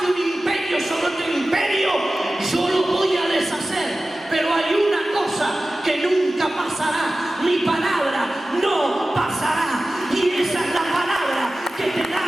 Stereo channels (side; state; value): both; normal; correlation 0.96